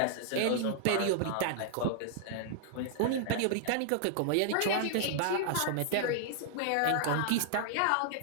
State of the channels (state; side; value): different; both; correlation -0.01